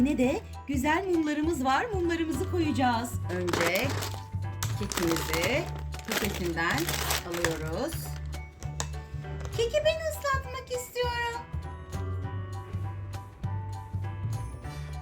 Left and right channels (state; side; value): identical; both; correlation 1.00